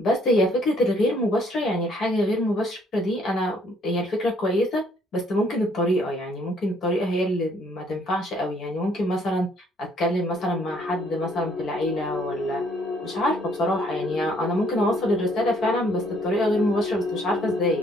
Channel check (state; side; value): normal; both; correlation 0.65